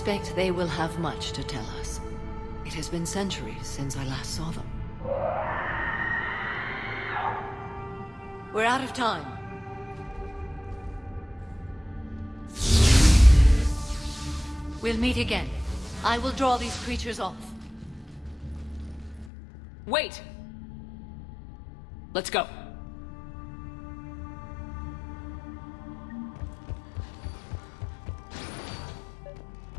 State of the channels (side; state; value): right; drops out; at 19.3 s